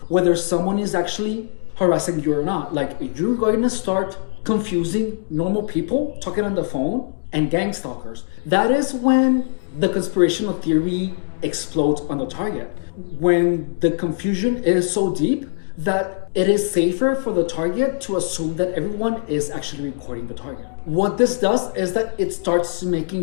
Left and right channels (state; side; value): silent; right; 65 dB below the other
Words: whether someone is actually harassing you or not. Like you're going to start confusing normal people talking on the phone and gang stalkers. That is when the conspirational theory explodes on the target. When the confusion is so deep that it is safer for the target to assume that everyone is actually recording the target. What this does is that it starts